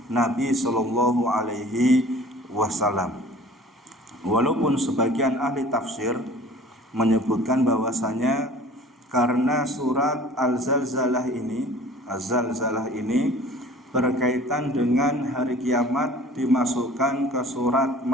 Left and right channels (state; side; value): normal; both; correlation 0.46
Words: Nabi Sallallahu Alaihi Wasallam. Walaupun sebagian ahli tafsir menyebutkan bahwasanya karena surat Az-Zalzalah ini berkaitan dengan hari kiamat, dimasukkan ke surat